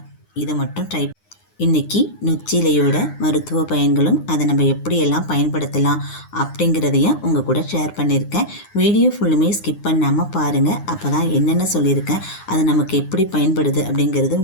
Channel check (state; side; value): late; right; 9.7 ms